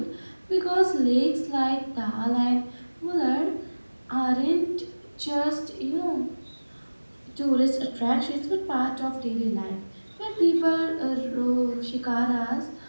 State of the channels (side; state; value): both; inverted; correlation -1.00